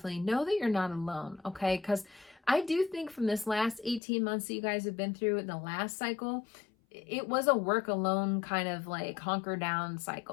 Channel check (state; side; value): drops out; right; at 4.0 s